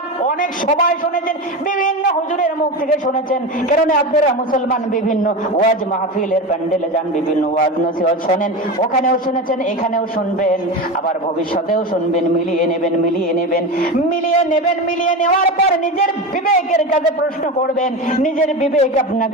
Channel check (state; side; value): normal; both; correlation 0.23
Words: অনেক সবাই শুনেছেন, বিভিন্ন হুজুরের মুখ থেকে শুনেছেন, কারণ আপনারা মুসলমান বিভিন্ন ওয়াজ মাহফিলের প্যান্ডেলে যান, বিভিন্ন ওয়াজ নসিহত শোনেন, ওখানেও শুনেছেন, এখানেও শুনবেন, আবার ভবিষ্যতেও শুনবেন। মিলিয়ে নেওয়ার পর নিজের বিবেকের কাছে প্রশ্ন করবেন, নিজের বিবেক